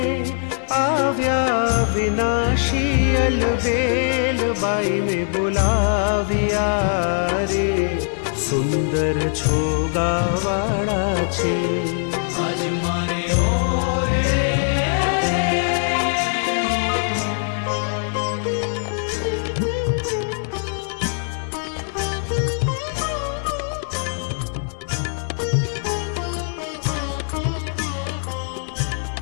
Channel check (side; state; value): right; silent; 64 dB below the other